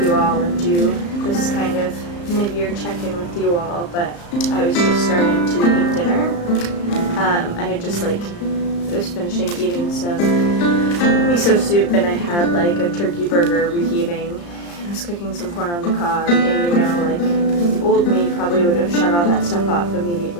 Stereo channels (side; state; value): right; late; 35 ms